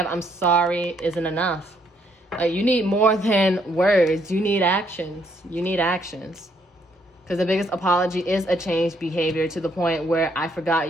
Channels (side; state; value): both; normal; correlation 0.70